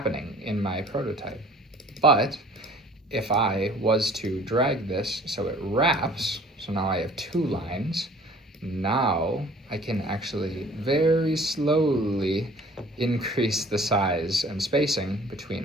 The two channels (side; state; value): both; normal; correlation 0.51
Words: in my prototype. But if I was to drag this so it wraps, so now I have two lines, now I can actually very slowly increase the size and spacing between